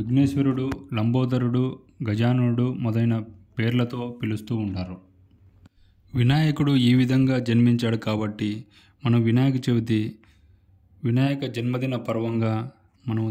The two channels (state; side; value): identical; both; correlation 1.00